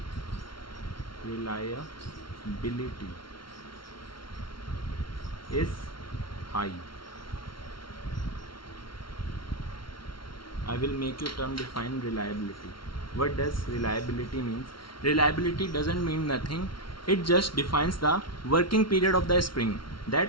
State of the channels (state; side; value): late; right; 0.73 ms